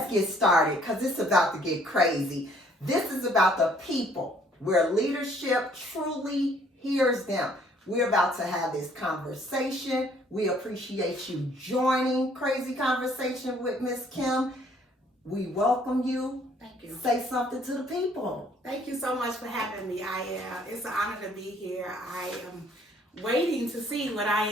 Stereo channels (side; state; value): both; normal; correlation 0.61